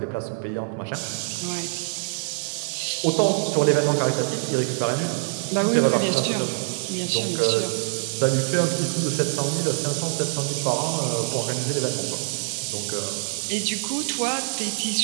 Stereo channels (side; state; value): left; silent; 62 dB below the other